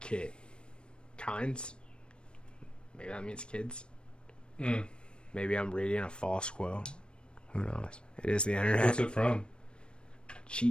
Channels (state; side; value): late; right; 0.055 ms